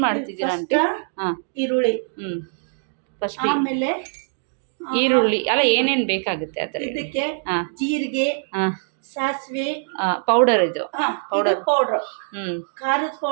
ಮಾಡ್ತಿದ್ದೀರಾ ಆಂಟಿ? ಹಾಂ, ಈರುಳ್ಳಿ. ಫಸ್ಟ್ ಆಮೇಲೆ ಈರುಳ್ಳಿ ಅಲ್ಲ, ಏನೇನು ಬೇಕಾಗುತ್ತೆ ಆ ಥರ? ಇದಕ್ಕೆ ಹಾಂ, ಜೀರಿಗೆ, ಹಾಂ, ಸಾಸಿವೆ ಪೌಡರ್ ಇದು ಪೌಡರ್, ಖಾರದ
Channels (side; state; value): left; silent; digital silence